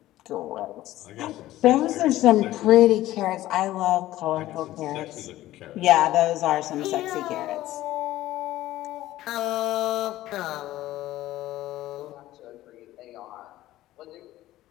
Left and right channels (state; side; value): quieter; right; 15.3 dB